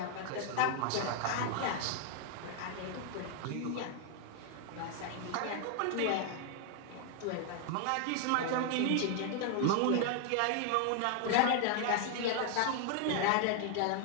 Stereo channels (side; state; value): both; different; correlation 0.00